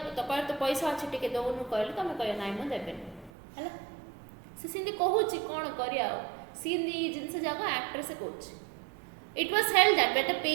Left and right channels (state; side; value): drops out; left; at 3.3 s